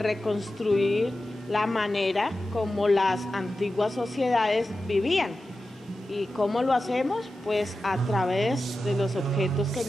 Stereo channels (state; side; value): normal; both; correlation 0.93